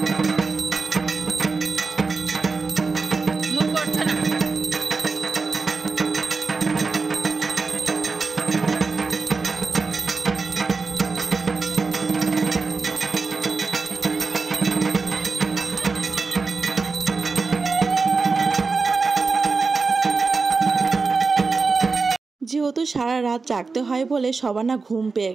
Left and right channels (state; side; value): quieter; left; 4.4 dB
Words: যেহেতু সারা রাত জাগতে হয় বলে সবার না ঘুম পেয়ে